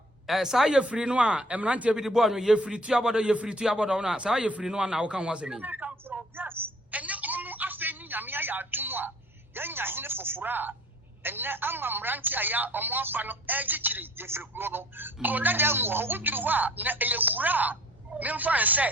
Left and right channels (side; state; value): both; normal; correlation 0.53